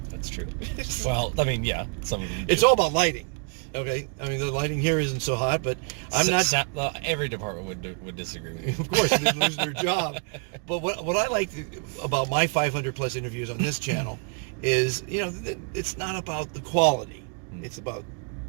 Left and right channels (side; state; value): left; quieter; 39.1 dB